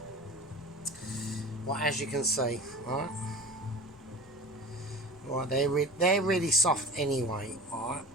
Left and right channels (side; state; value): both; normal; correlation 0.37